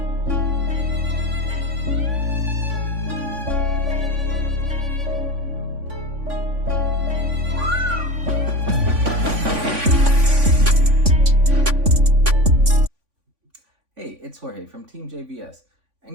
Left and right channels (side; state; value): left; late; 3.5 ms